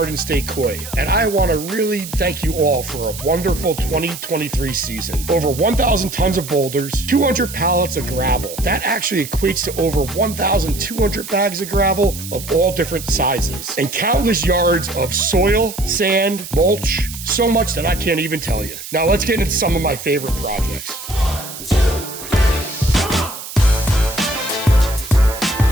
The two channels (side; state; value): right; noise; hiss, 11 dB below the sound